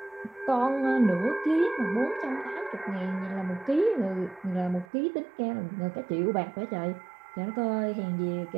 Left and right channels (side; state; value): left; drops out; at 4.9 s